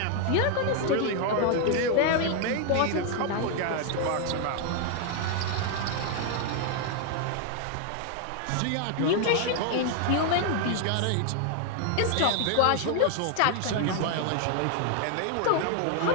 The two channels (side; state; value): both; different; correlation 0.00